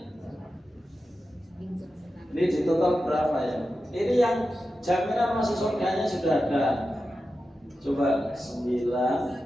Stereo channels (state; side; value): normal; both; correlation 0.91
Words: Ini di total berapa ya? Ini yang jaminan masuk surganya sudah ada. Coba 9,